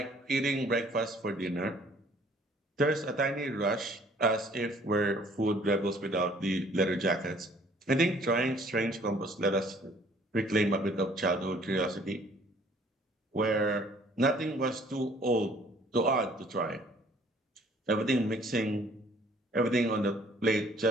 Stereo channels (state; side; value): normal; both; correlation 0.57